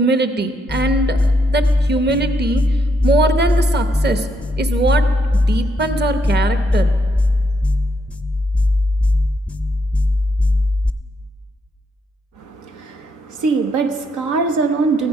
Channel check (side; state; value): both; normal; correlation 0.77